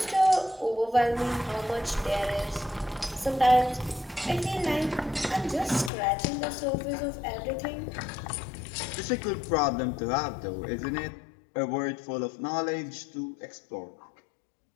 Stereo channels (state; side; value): drops out; right; at 5.9 s